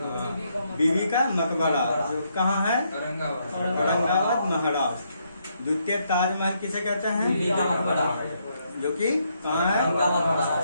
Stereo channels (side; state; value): both; inverted; correlation -0.75